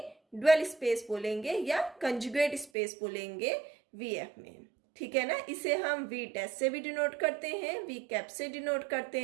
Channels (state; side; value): drops out; left; at 2.7 s